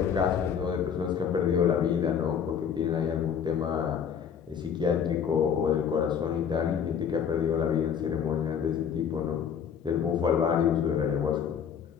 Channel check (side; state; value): right; quieter; 7.6 dB